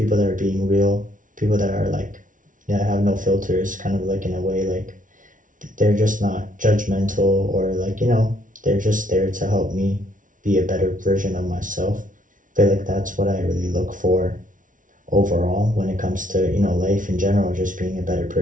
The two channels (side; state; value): left; late; 0.38 ms